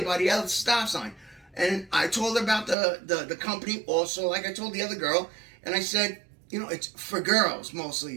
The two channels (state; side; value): drops out; left; at 2.8 s